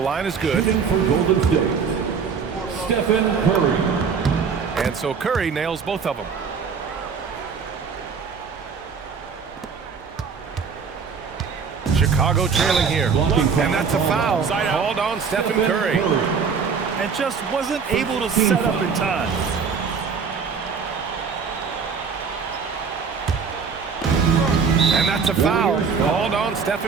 is good. Shooting for Golden State, Stephen Curry. And so Curry nails both of them. Chicago trailing here. And that's a foul. Called on Stephen Curry. And just wasn't able to set up in time. And that's a foul. Called on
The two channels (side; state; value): left; quieter; 5.9 dB